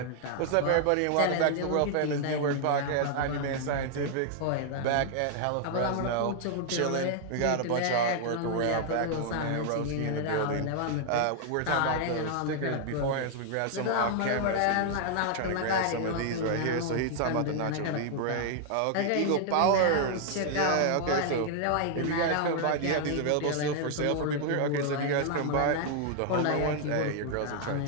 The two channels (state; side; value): different; both; correlation 0.00